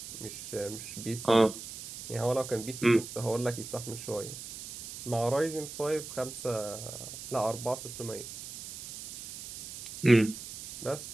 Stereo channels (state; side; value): noise; right; hiss, 11 dB below the sound